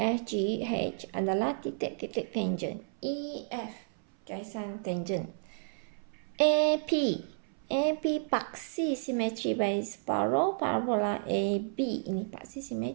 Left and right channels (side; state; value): left; silent; 57 dB below the other